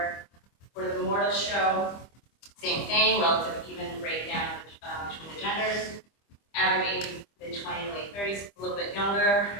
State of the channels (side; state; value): right; late; 25 ms